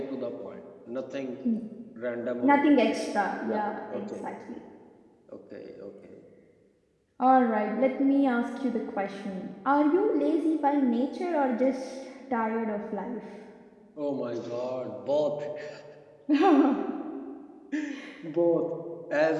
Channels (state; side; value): identical; both; correlation 1.00